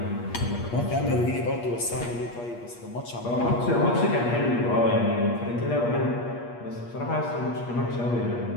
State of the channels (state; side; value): late; right; 8.4 ms